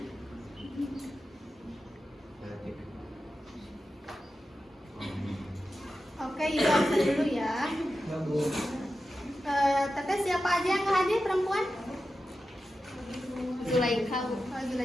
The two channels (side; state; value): both; normal; correlation 0.92